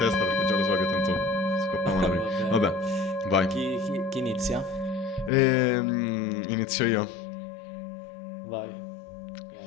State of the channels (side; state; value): right; drops out; at 5.3 s